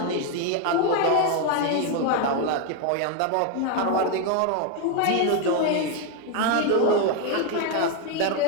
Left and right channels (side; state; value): both; different; correlation 0.01